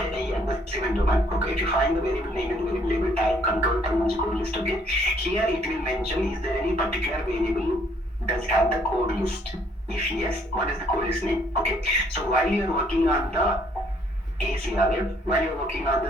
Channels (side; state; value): both; normal; correlation 0.65